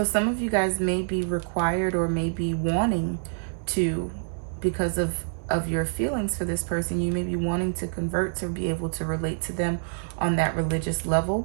some of you guys may be required or may be wanting to, because of your feelings for this person, you may be wanting to convert to be able to relate to them on that religious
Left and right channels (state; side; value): silent; left; 61 dB below the other